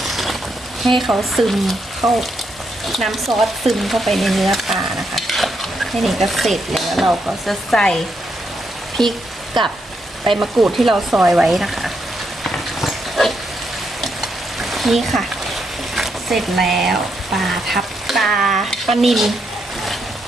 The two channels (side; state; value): both; normal; correlation 0.79